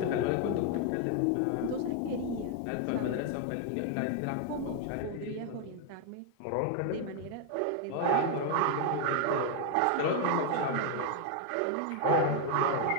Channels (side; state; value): both; different; correlation 0.01